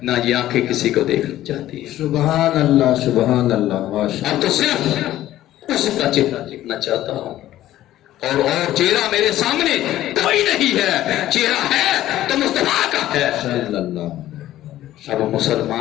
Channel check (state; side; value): quieter; right; 13.9 dB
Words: نہ یہ آنکھیں کسی کو دیکھنا چاہتی ہیں. سبحان اللہ, سبحان اللہ, ماشاء اب تو صرف اس کا چہرہ دیکھنا چاہتا ہوں, اور چہرہ میرے سامنے کوئی نہیں ہے, چہرہ ہے تو مصطفیٰ کا ہے صلی اللہ. اب